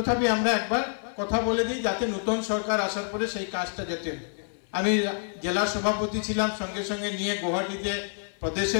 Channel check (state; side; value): silent; right; 56 dB below the other